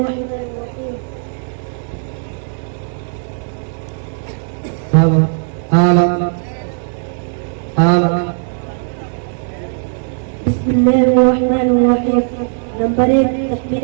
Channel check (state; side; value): silent; left; digital silence